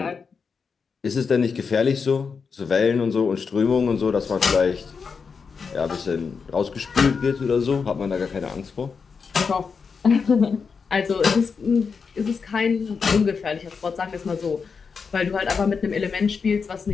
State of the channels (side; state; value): right; quieter; 5.5 dB